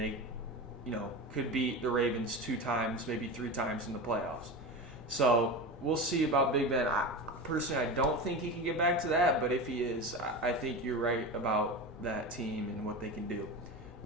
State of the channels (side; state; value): both; normal; correlation 0.26